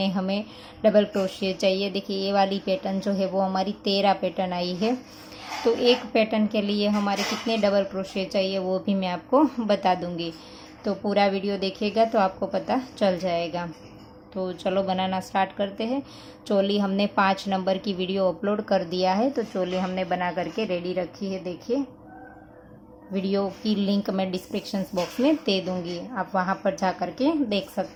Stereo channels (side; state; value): both; identical; correlation 1.00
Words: हमें डबल क्रोशिया चाहिए। देखिए, ये वाली पैटर्न जो है वो हमारी 13 पैटर्न आई है। तो एक पैटर्न के लिए हमारे कितने डबल क्रोशिया चाहिए वो भी मैं आपको बता दूंगी। तो पूरा वीडियो देखिएगा तो आपको पता चल जाएगा। तो चलो बनाना स्टार्ट करते हैं। चोली हमने 5 नंबर की वीडियो अपलोड कर दिया है। तो चोली हमने बना करके रेडी रखी है। देखिए, वीडियो की लिंक मैं डिस्क्रिप्शन बॉक्स में दे दूंगी, आप वहां पर जा करके देख